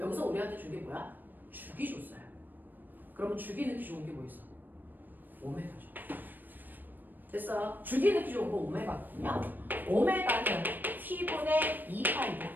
우리한테 준 게 뭐야? 주기 줬어요. 그러면 주기 넣기 좋은 게 뭐 있어? 오메가죠. 됐어. 주기 넣기 좋은 거 오메가거든요. 오메가는 t분의 2파이야.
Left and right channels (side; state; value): left; late; 0.090 ms